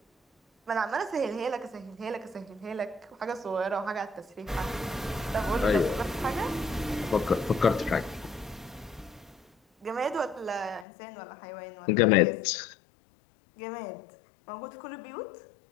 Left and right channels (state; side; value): drops out; right; at 10.9 s